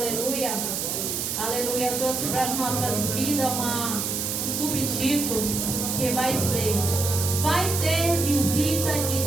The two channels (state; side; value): noise; right; hiss, 2 dB below the sound